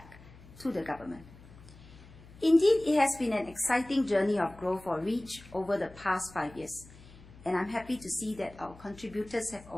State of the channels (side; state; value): left; noise; hum, 20 dB below the sound